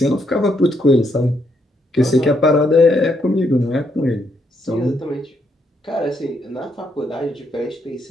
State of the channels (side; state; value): both; normal; correlation 0.75